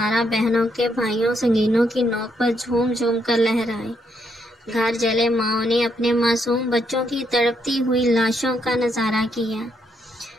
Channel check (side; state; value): both; normal; correlation 0.76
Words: بہنوں کے بھائیوں سنگینوں کی نوک پر جھوم جھوم کر لہرائے۔ گھر جلے ماؤں نے اپنے معصوم بچوں کی تڑپتی ہوئی لاشوں کا نظارہ کیا۔